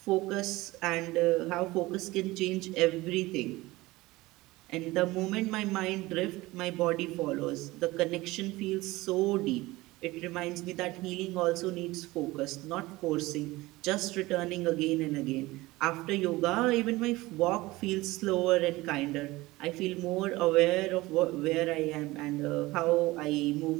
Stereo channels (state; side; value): quieter; left; 19.9 dB